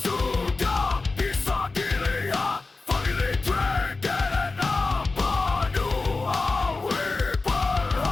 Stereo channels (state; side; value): quieter; right; 3.7 dB